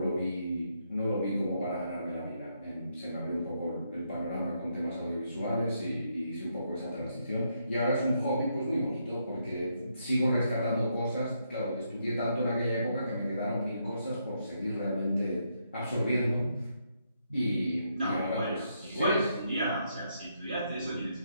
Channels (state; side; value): inverted; both; correlation -0.77